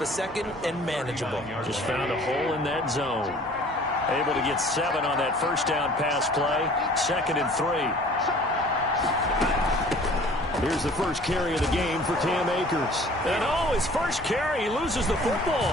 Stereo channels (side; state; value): both; normal; correlation 0.50